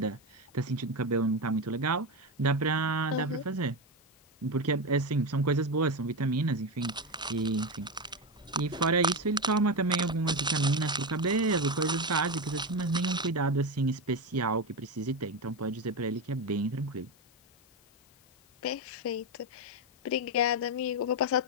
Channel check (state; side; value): noise; left; hiss, 30 dB below the sound